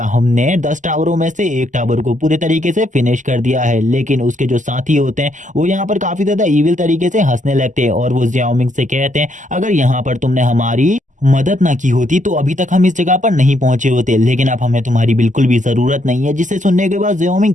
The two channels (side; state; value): left; late; 0.37 ms